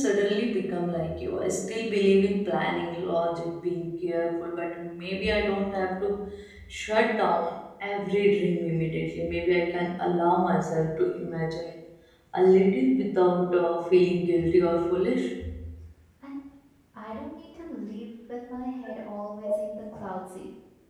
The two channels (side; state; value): both; identical; correlation 1.00